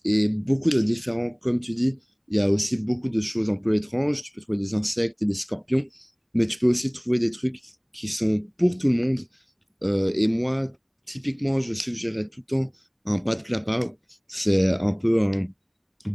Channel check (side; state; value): both; identical; correlation 1.00